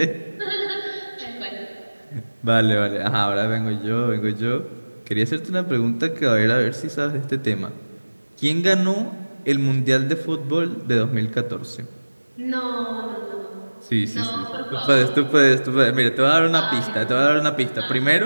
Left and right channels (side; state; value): both; inverted; correlation -1.00